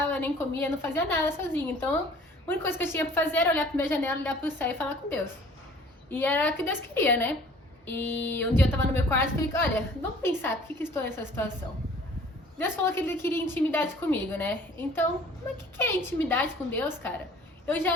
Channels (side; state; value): both; normal; correlation 0.51